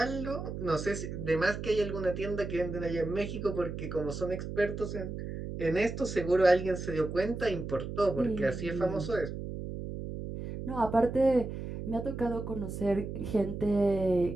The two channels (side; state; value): right; noise; hum, 7 dB below the sound